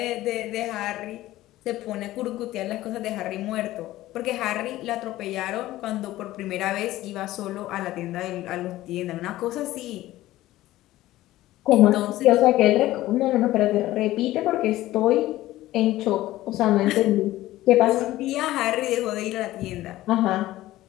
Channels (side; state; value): right; quieter; 15.9 dB